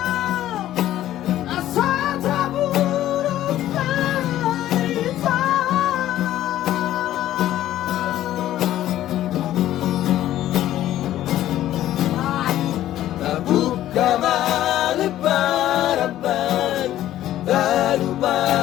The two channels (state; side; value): quieter; right; 13.2 dB